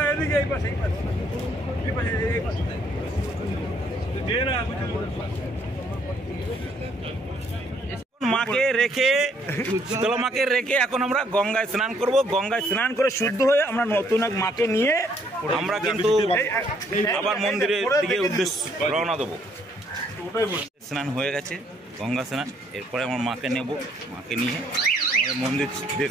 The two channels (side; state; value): both; normal; correlation 0.67